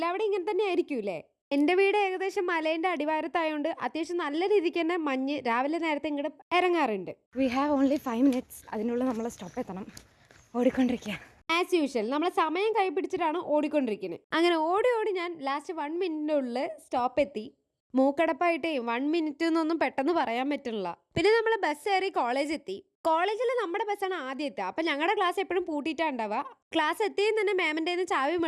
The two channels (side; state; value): both; identical; correlation 1.00